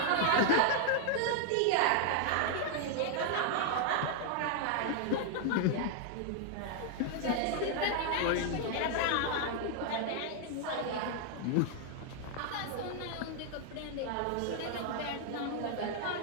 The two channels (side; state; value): both; different; correlation 0.00